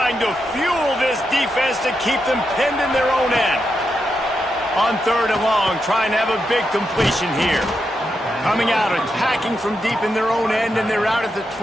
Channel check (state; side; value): normal; both; correlation 0.85